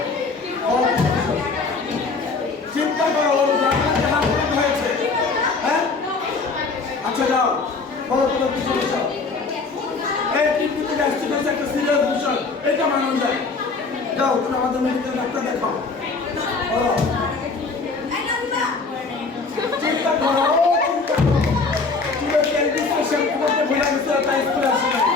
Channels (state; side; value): quieter; right; 4.2 dB